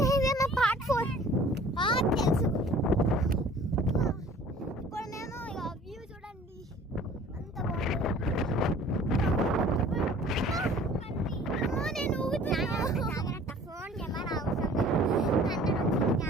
ఇదేనా part 4 తెలుసు. ఇప్పుడు మేము ఇక వ్యూ చూడండి అంత బాగుంది. నేను జాగ్రత్త ఫోన్ కెమెరా అవసరం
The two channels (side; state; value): both; normal; correlation 0.50